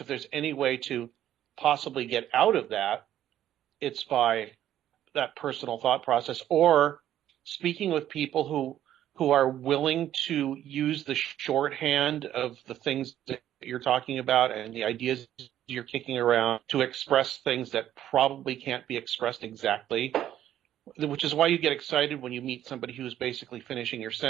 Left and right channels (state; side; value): quieter; left; 11.7 dB